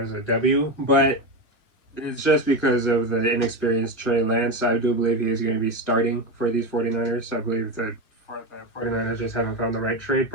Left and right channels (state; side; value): late; right; 2.0 ms